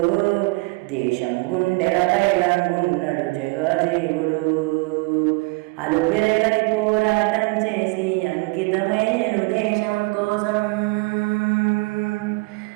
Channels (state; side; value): quieter; left; 26.4 dB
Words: దేశం గుండెలపైన ఉన్నడు జగజీవుడు। అలు పెరగని పోరాటం చేసి అంకితమయ్యను దేశం కోసం।